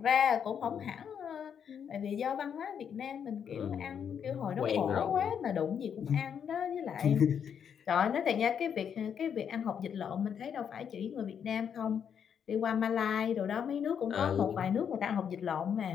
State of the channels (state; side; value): quieter; right; 7.9 dB